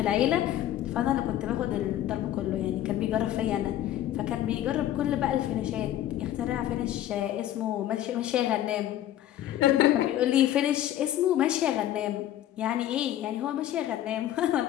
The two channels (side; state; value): right; quieter; 12.5 dB